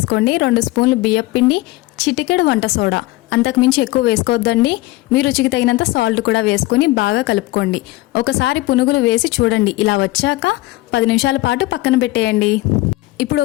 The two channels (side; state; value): right; quieter; 19.3 dB